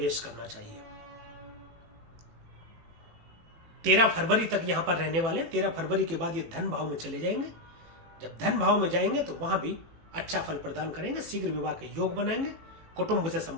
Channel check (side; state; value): left; late; 18 ms